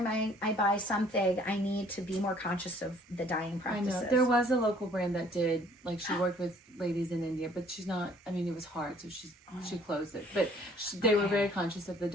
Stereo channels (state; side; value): normal; both; correlation 0.58